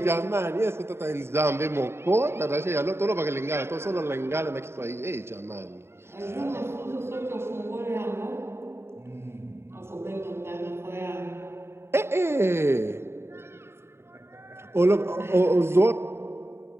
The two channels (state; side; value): late; left; 0.12 ms